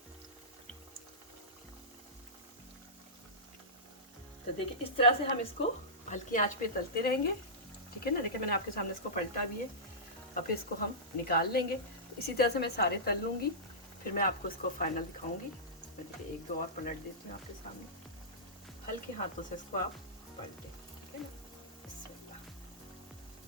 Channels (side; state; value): both; normal; correlation -0.17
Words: तो देखिए इस तरह से हम इसको हल्की आंच पे तलते रहेंगे, ठीक है ना। देखिए मैंने आपके सामने इसको पलटा भी है, अब फिर इसको हम निकाल लेंगे। तो इसी तरह से मैं सारे तल लूँगी, फिर मैं आपको इसको फाइनल दिखाऊंगी। मैं देखिए एक दो और पलट देती हूँ आपके सामने, हल्के हाथों से इसको आप पलटें, ठीक है ना।